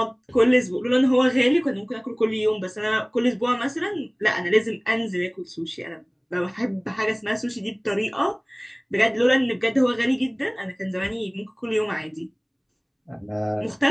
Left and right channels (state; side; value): identical; both; correlation 1.00